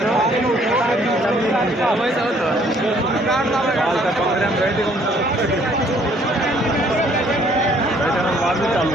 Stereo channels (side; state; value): both; normal; correlation 0.62